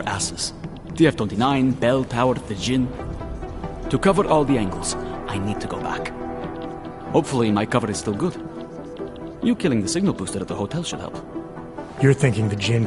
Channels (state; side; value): identical; both; correlation 1.00